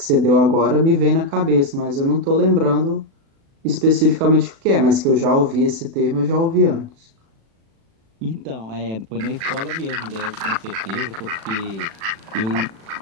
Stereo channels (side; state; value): left; late; 36 ms